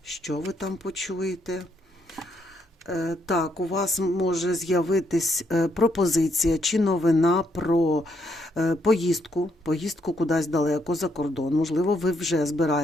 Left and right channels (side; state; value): both; normal; correlation 0.75